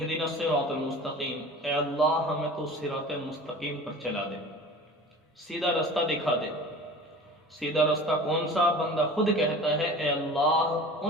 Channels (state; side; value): normal; both; correlation 0.40